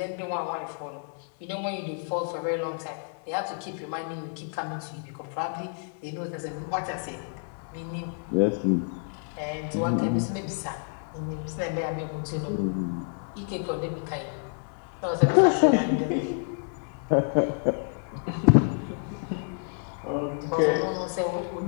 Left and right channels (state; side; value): silent; right; 59 dB below the other